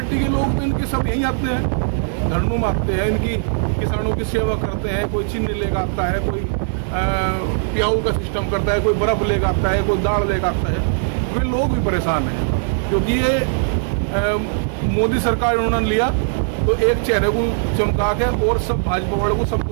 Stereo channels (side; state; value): left; silent; digital silence